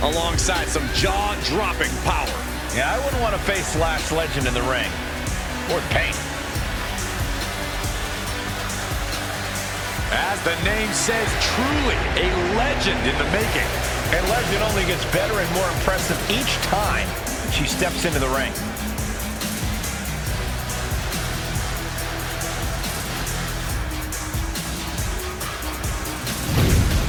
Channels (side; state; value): both; identical; correlation 1.00